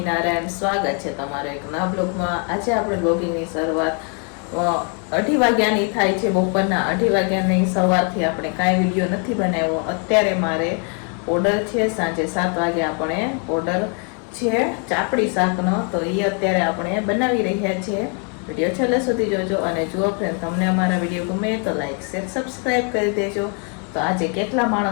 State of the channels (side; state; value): right; quieter; 39.5 dB